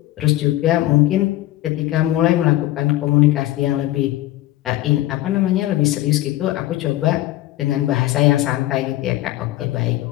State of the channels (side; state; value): right; quieter; 15.9 dB